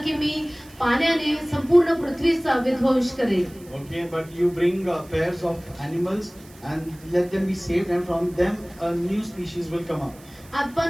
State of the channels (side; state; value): right; noise; hiss, 24 dB below the sound